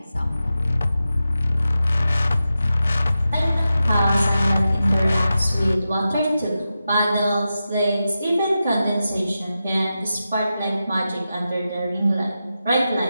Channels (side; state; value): both; inverted; correlation -0.91